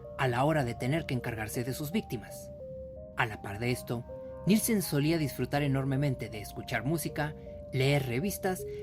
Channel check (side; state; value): both; identical; correlation 1.00